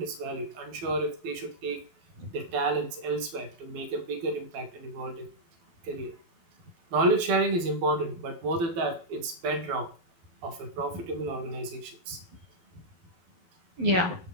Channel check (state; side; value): late; left; 12 ms